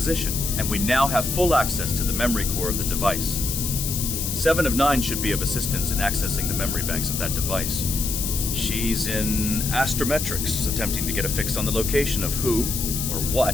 and we now have full access to the memory core of the device. 7 of 9 should be of assistance in accessing the memory banks of that device. She's in astrometrics, attempting to get a fix on the location of who, or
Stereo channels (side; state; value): left; noise; hiss, 3 dB below the sound